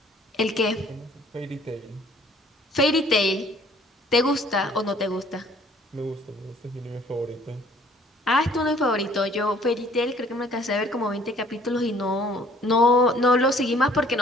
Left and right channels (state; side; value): normal; both; correlation 0.57